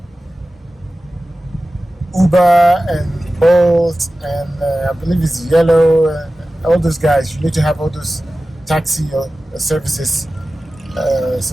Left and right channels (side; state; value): both; normal; correlation 0.95